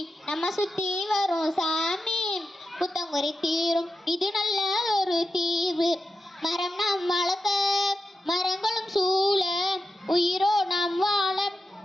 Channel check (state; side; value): normal; both; correlation 0.90